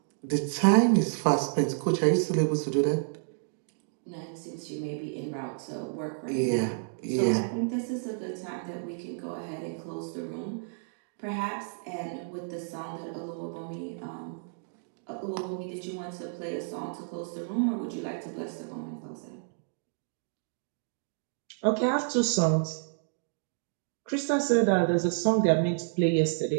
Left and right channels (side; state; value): left; silent; digital silence